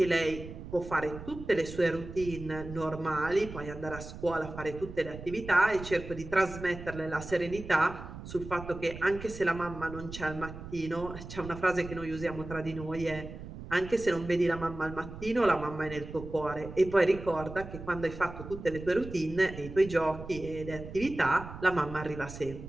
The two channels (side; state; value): right; noise; rumble, 12 dB below the sound